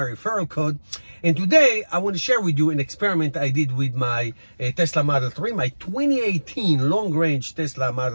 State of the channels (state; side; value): inverted; both; correlation -1.00